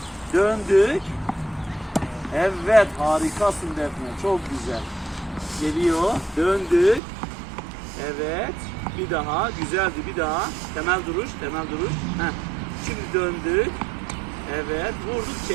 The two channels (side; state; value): left; drops out; at 7.0 s